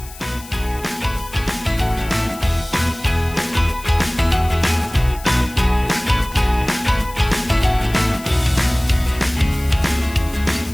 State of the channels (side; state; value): left; noise; hiss, 18 dB below the sound